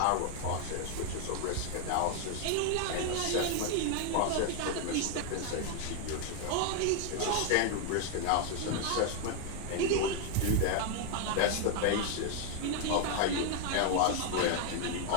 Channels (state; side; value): different; both; correlation 0.01